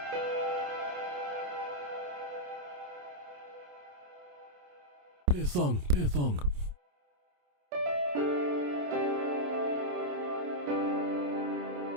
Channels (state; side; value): late; left; 28 ms